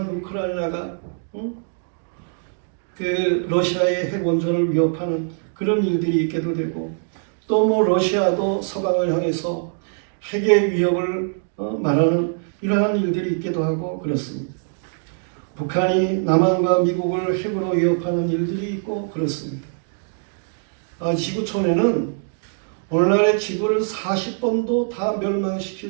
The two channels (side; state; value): left; silent; digital silence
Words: 우크라이나가 그 러시아의 핵 원전을 위협하는 그런 일들이 있게도 되고, 또 뭐 러시아도 서방을 향해서 핵의 위협을 말하는 이러한 일들이 있기도 하고 그렇습니다. 북한이 남한과 미국을 핵으로 위협하는 일들이 있고 그렇습니다. 지구촌에는 오늘날의 지구를 40번도 다